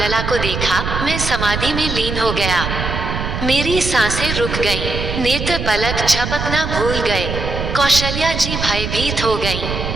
को देखा, मैं समाधि में लीन हो गया। मेरी सांसें रुक गईं, नेत्र पलक झपकना भूल गए। कौशल्या जी भयभीत हो गईं।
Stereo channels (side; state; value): right; noise; rumble, 4 dB below the sound